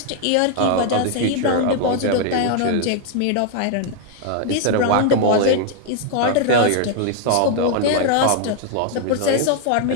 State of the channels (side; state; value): both; different; correlation 0.00